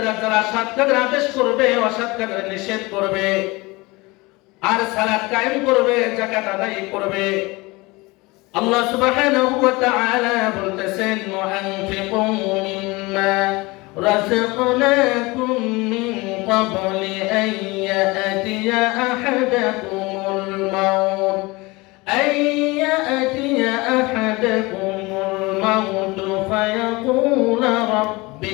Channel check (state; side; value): quieter; right; 23.4 dB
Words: যারা সৎ কাজের আদেশ করবে, অসৎ কাজের নিষেধ করবে। আর সালাত কায়েম করবে, যাকাত আদায় করবে। আল্লাহ সুবহানাহু ওয়া তাআলা বলতেছেন, ওয়ানফিকু মিম্মা রাযাকনাকুম মিন ক্বাবলি আন ইয়াতিয়া আহাদাকুমুল মাউত ফায়াকুলা রাব্বি